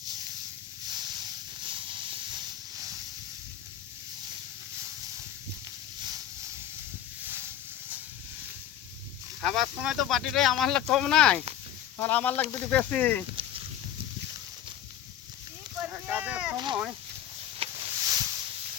খাবার সময় তো বাটিটাই আমার লাগ কম নাই, আর আমার লাগ দুটি বেশি। কি করবে।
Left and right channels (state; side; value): quieter; right; 10.6 dB